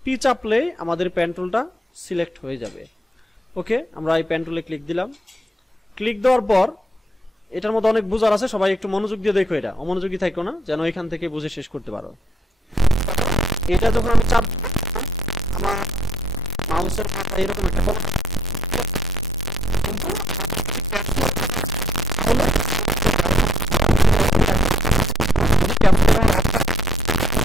পি চাপলে আমাদের পেন টুলটা সিলেক্ট হয়ে যাবে। ওকে, আমরা এই পেন টুলে ক্লিক দিলাম। ক্লিক দেওয়ার পর এটার মধ্যে অনেক বুঝার আছে, সবাই একটু মনোযোগ দিয়ে দেখো, এটা অমনোযোগী থাকো না, যেন এখান থেকে বুঝে শেষ করতে পারো। এটা যখন আমি চাপ, আমার মাউসের মাথা এরকম একটা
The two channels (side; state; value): both; normal; correlation 0.72